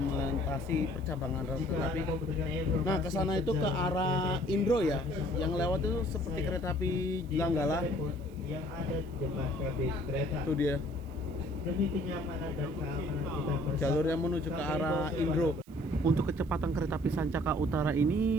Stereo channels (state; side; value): noise; right; hiss, 29 dB below the sound